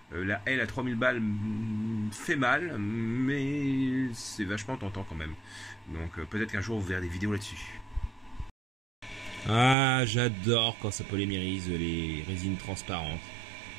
La L à 3000 balles fait mal, mais c'est vachement tentant quand même. Donc peut-être qu'un jour vous verrez des vidéos là-dessus. Ah, j'adore quand ça polymérise les résines transparentes.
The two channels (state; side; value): drops out; left; at 9.8 s